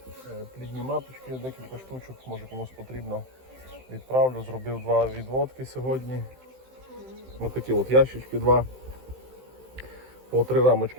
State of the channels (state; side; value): late; left; 15 ms